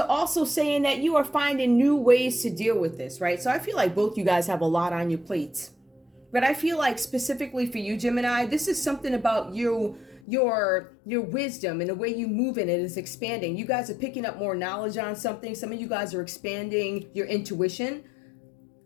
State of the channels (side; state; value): right; drops out; at 10.2 s